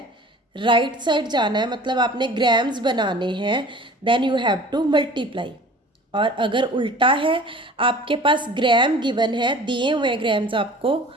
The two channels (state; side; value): normal; both; correlation 0.44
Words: राइट साइड जाना है, मतलब आपने ग्राम्स बनाने हैं, then you have to multiply. और अगर उल्टा है, आपके पास ग्राम गिवन है, दिए हुए ग्राम्स आपको,